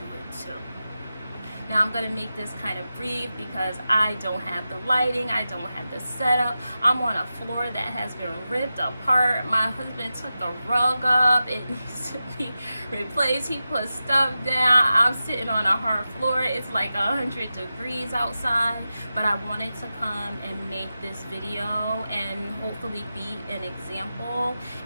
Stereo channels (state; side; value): inverted; both; correlation -0.92